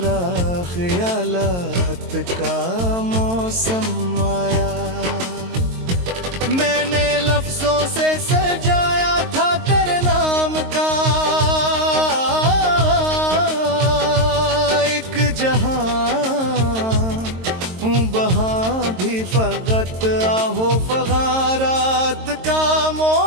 ख्यालात का मौसम आया। मैंने लफ्जों से सजाया था तेरे नाम का एक जहां, वहां भी फकत आहो फगारात का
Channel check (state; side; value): late; left; 22 ms